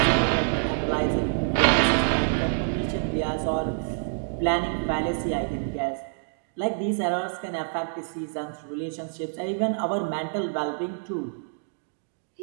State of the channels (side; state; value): left; silent; digital silence